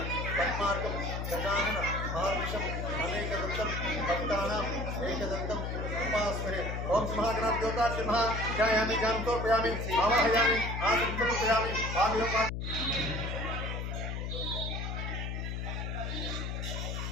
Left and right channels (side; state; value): left; noise; hum, 3 dB below the sound